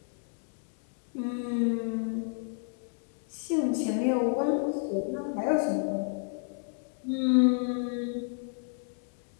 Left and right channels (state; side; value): silent; right; 57 dB below the other